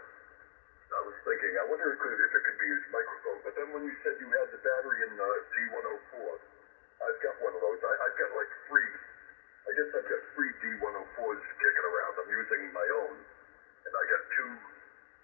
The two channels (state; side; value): silent; right; digital silence